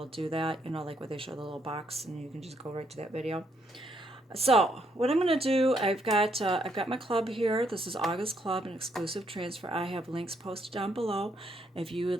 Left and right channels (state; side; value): normal; both; correlation 0.73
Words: do that. You know, like where they show the little box and you can just go right to that video. So what I'm going to do, I've got my club here. This is August Club, an exclusive transfer. I have links posted down below if you